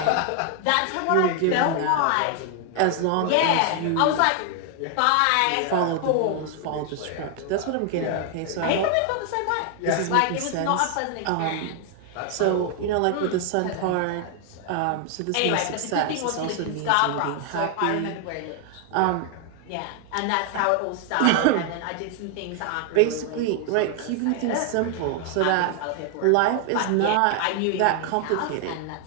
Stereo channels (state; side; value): different; both; correlation 0.00